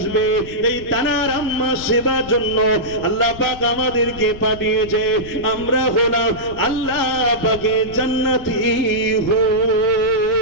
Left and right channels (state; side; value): noise; left; rumble, 15 dB below the sound